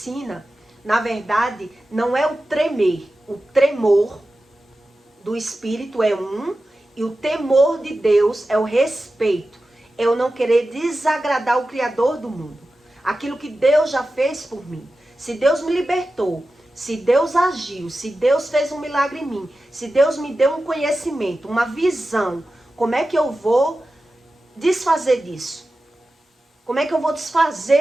na verdade, não é o tremer. O tremor do Espírito é um, e o temor de Deus é o respeito. É eu não querer desagradar o Criador do mundo. Aquilo que Deus já fez por mim. Se Deus me libertou, se Deus agiu, se Deus fez um milagre em mim, se Deus me deu um conhecimento, uma visão, como é que eu vou desfazer disso? Como é que eu vou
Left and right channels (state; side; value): normal; both; correlation 0.93